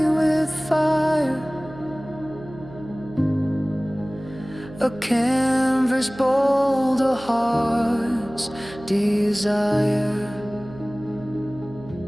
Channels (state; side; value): noise; right; hum, 17 dB below the sound